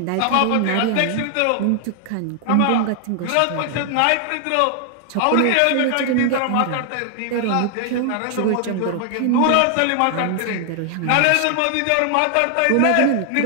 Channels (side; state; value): both; different; correlation 0.00